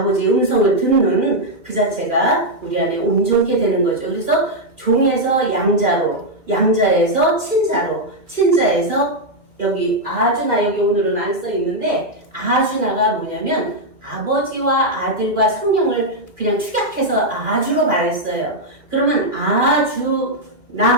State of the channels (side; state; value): left; late; 2.4 ms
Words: 음성을 듣는 그 자체가 우리 안에 온전케 되는 거죠. 그래서 종에서 양자로, 양자에서 친자로, 친자에서 여기 아주나 여기 오늘은 안 써 있는데 아주나가 뭐냐면 아버지와 아들과 성령을 그냥 축약해서 아주로 말했어요. 그러면